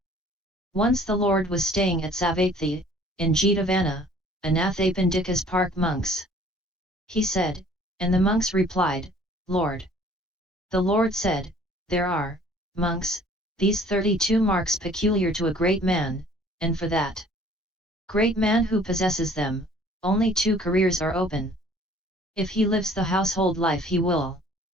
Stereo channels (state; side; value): normal; both; correlation 0.54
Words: Once the Lord was staying at VIII, in Jetavana, Anathapindika's park monks. He said, and the monks replied, Lord. The Lord said, there are, monks, these 32 marks peculiar to a great man, and for that great man who possesses them, only 2 careers are open. If he lives the household life he will